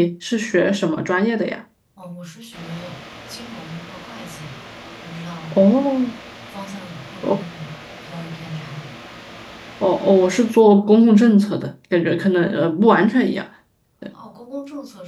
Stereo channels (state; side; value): identical; both; correlation 1.00